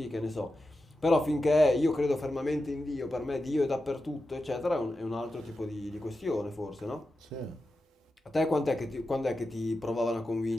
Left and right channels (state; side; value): normal; both; correlation 0.91